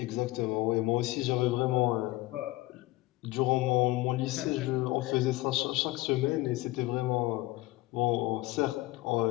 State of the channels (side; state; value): right; quieter; 19.3 dB